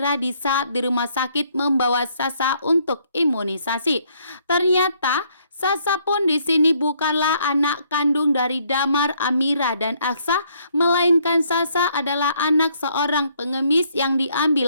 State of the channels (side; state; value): both; inverted; correlation -0.68